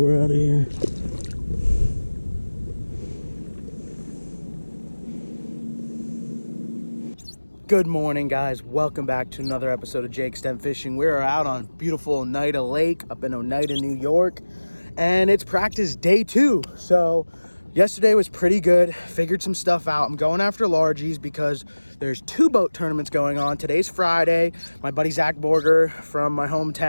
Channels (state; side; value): inverted; both; correlation -1.00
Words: out of here. Good morning, guys. Welcome back to another episode of Jake Stem Fishing. We are out on beautiful Oneida Lake up in Oneida, New York, and it's practice day 2. So yesterday was pretty good. Figured some stuff out. I'm going after largies because there's 2 boat tournaments going on. Today's Friday. My buddy Zach Borger from my